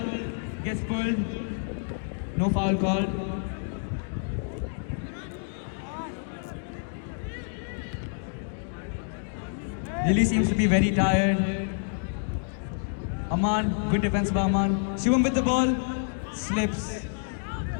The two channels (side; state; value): right; silent; digital silence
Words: Gets pulled. No foul called. Lily seems to be very tired. Amman, good defense by Amman. Shivam with the ball. Slips.